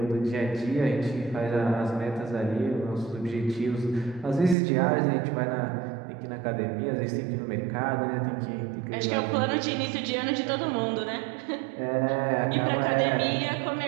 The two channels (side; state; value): left; drops out; at 4.5 s